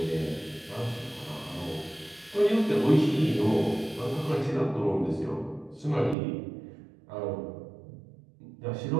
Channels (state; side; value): drops out; left; at 6.2 s